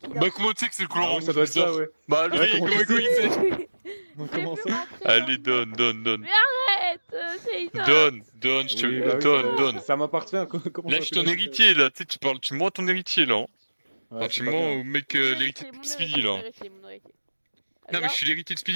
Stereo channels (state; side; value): inverted; both; correlation -1.00